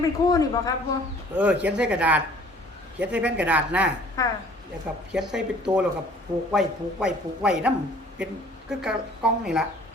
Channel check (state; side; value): normal; both; correlation 0.53